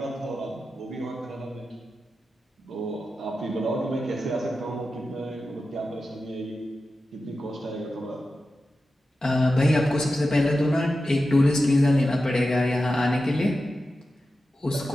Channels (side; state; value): both; normal; correlation 0.92